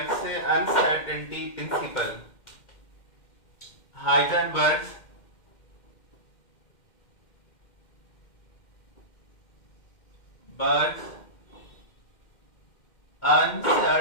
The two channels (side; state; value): right; late; 2.1 ms